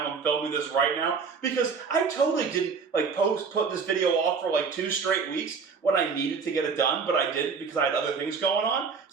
I'm filming this right now, because I totally didn't put this video off for like 2 straight weeks when I needed to get it done, but I didn't because I had other things going on.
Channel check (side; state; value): left; quieter; 5.5 dB